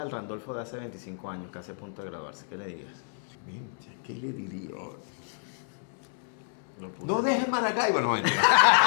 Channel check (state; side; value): silent; right; 58 dB below the other